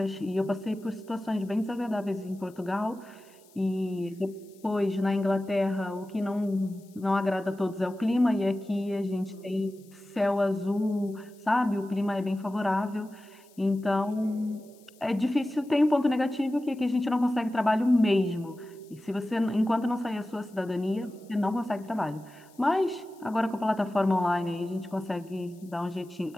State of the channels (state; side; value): noise; left; hiss, 29 dB below the sound